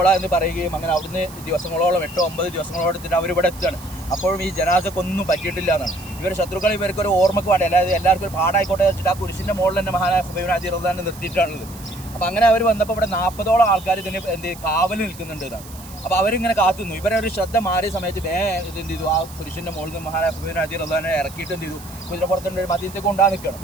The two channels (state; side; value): noise; right; hiss, 18 dB below the sound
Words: എന്ന് പറയുകയും അങ്ങനെ അവിടുന്ന് ദിവസങ്ങളോളം 8-9 ദിവസങ്ങളോളം എടുത്തിട്ട് അവരിവിടെ എത്തുകയാണ്. അപ്പോഴും ഈ ജനാസക്കൊന്നും പറ്റിയിട്ടില്ല എന്നാണ്. ഇവർ ശത്രുക്കൾ ഇവർക്കൊരു ഓർമ്മക്ക് വേണ്ടി, അതായത് എല്ലാവർക്കും ഒരു പാടായിക്കോട്ടെ വെച്ചിട്ട് ആ കുരിശിൻ്റെ മുകളിൽ തന്നെ മഹാനായ ഖുബൈബ് ബിൻ അദി റളിയല്ലാഹു നിർത്തിയിട്ടാണുള്ളത്. അപ്പോൾ അങ്ങനെ അവർ വന്നപ്പോൾ ഇവിടെ 40ഓളം ആൾക്കാർ ഇതിന് കാവൽ നിൽക്കുന്നുണ്ട് എന്നാണ്. അപ്പോൾ അവരിങ്ങനെ കാത്തുന്നു. ഇവരൊരു ശ്രദ്ധ മാറിയ സമയത്ത് ഇത് എന്ത് ചെയ്തു, ആ പുരുഷൻ്റെ മുകളിൽ നിന്ന് മഹാനായ ഖുബൈബ് ബിൻ അദി റളിയല്ലാഹുവിനെ ഇറക്കിയിട്ട് എന്ത് ചെയ്തു, കുതിരപ്പുറത്തിൻ്റെ ഒരു മദീനത്തേക്ക് കൊണ്ടുപോകാൻ നിൽക്കണം.